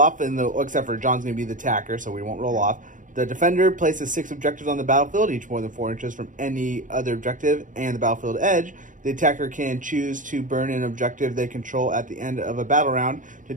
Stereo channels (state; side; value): late; left; 0.38 ms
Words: except for John's going to be the attacker, so we won't roll off. The defender places 6 objectives on the battlefield, each more than 4 inches from any other objective and the battlefield edge. The attacker can choose to burn an objective they control at the end of a battle round. To